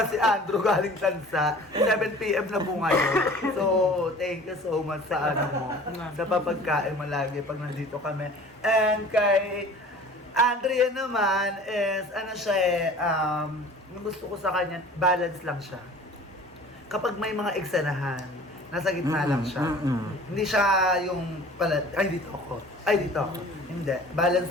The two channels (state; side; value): normal; both; correlation 0.45